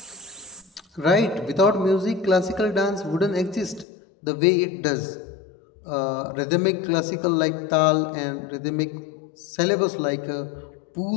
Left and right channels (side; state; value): right; drops out; at 3.9 s